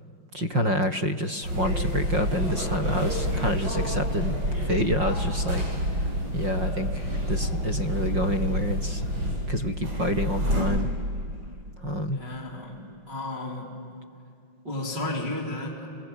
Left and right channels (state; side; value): late; left; 5.6 ms